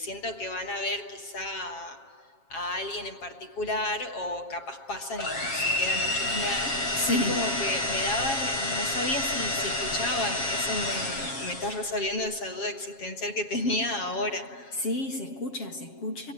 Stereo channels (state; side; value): late; right; 7.3 ms